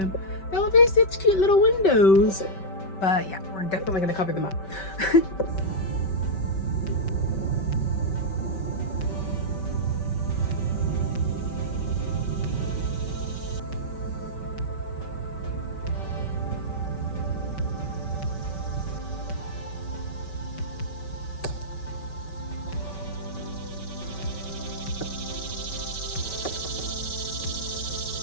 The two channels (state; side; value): late; right; 5.2 ms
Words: They'll be such cute little windows. But yeah, we're definitely gonna cover them up.